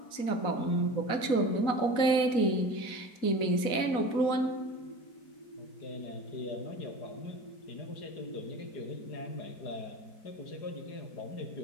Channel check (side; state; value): right; late; 4.1 ms